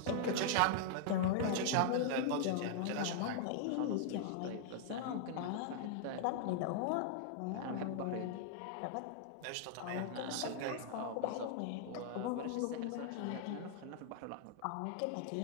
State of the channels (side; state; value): both; different; correlation -0.01